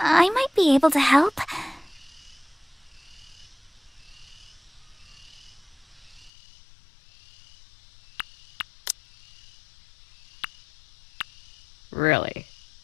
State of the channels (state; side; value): drops out; right; at 6.3 s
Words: I might be able to help. Really?